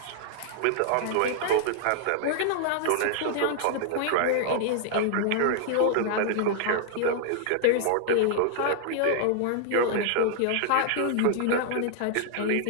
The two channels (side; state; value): both; different; correlation -0.01